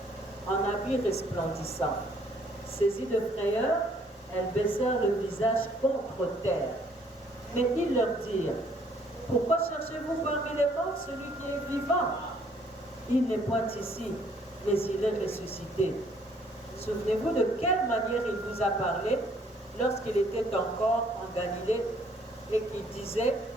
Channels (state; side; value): normal; both; correlation 0.63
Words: en habits resplendissants. Saisies de frayeur, elles baissèrent le visage contre terre. Mais ils leur dirent, « Pourquoi cherchez-vous parmi les morts celui qui est vivant? Il n'est point ici, mais il est ressuscité. Souvenez-vous de quelle manière il vous a parlé lorsqu'il était encore en Galilée et qu'il disait,